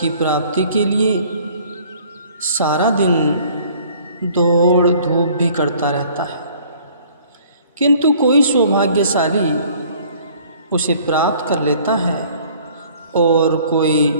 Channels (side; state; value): both; inverted; correlation -0.55